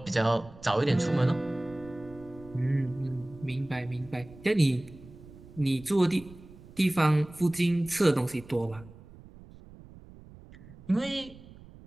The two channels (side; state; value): right; noise; rumble, 20 dB below the sound